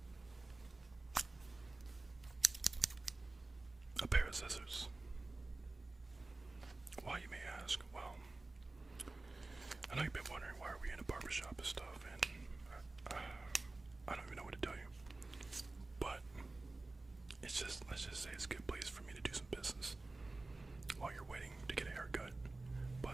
a pair of scissors. Why, you may ask? Well, I know you've been wondering why are we in a barbershop and stuff, and I don't even know what to tell you. But it's just, let's just say it's a good place for me to do some business while you're waiting to get a haircut.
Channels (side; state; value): left; quieter; 3.2 dB